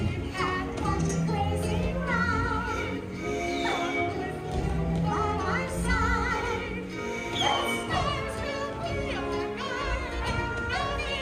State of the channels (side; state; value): both; identical; correlation 1.00